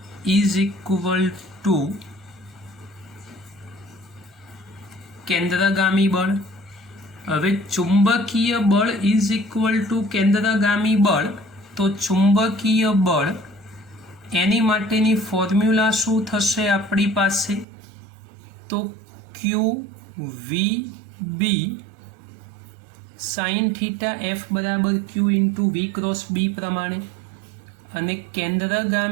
ઇઝ ઇક્વલ ટુ કેન્દ્રગામી બળ. હવે ચુંબકીય બળ ઇઝ ઇક્વલ ટુ કેન્દ્રગામી બળ, તો ચુંબકીય બળ એની માટેની ફોર્મ્યુલા શું થશે આપણી પાસે? તો QVB sin θF બરાબર Q × V × B પ્રમાણે, અને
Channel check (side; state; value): left; drops out; at 17.7 s